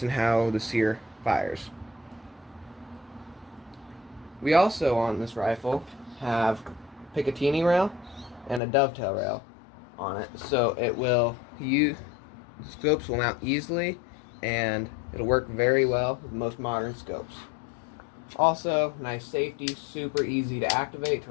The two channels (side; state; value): right; drops out; at 8.6 s